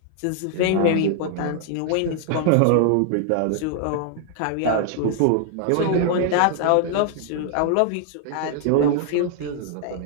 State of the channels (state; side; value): different; both; correlation 0.00